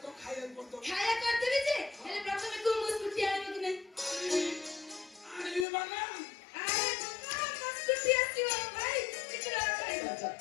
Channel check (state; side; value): drops out; right; at 5.7 s